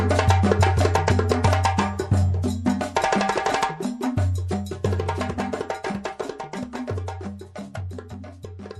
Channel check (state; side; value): identical; both; correlation 1.00